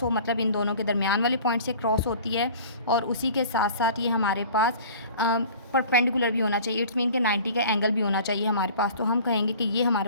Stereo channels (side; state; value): both; inverted; correlation -0.44